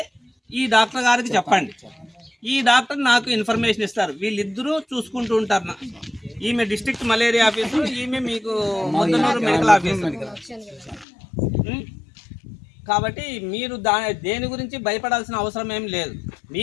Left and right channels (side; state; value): right; drops out; at 11.1 s